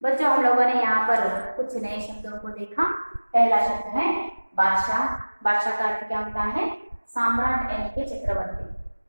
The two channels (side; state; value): both; inverted; correlation -1.00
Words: बच्चों, हम लोगों ने यहाँ पर कुछ नए शब्दों को देखा। पहला शब्द है बादशाह। बादशाह का अर्थ क्या होता है? सम्राट यानी कि चक्रवर्ती।